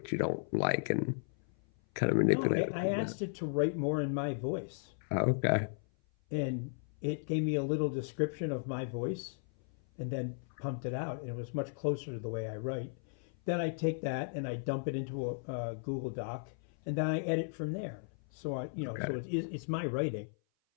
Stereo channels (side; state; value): right; silent; 54 dB below the other